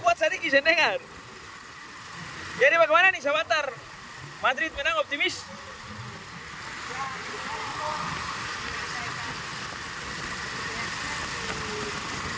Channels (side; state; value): both; identical; correlation 1.00